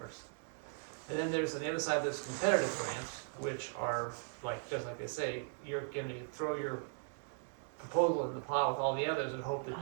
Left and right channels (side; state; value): left; silent; 52 dB below the other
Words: And then there's, on the other side, there's competitive grants, which are like, just like they say, you're gonna throw your proposal in the plow with all the others and hope that